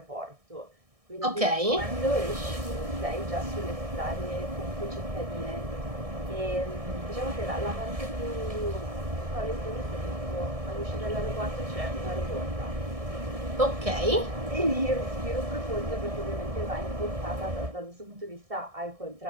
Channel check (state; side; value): late; left; 1.6 ms